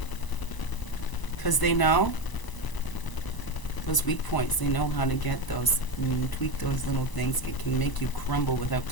Because they know those weak points. They know how to get those, tweak those little things. It can make you crumble without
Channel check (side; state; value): right; late; 1.0 ms